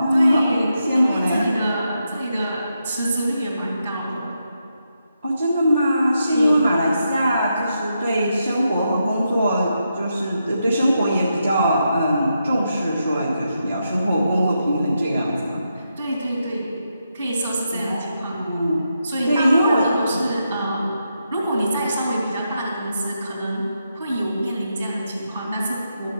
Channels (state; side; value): inverted; both; correlation -0.84